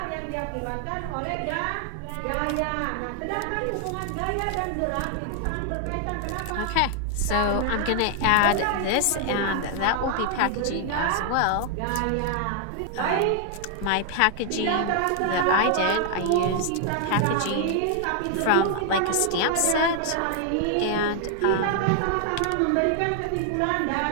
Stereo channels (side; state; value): both; different; correlation 0.00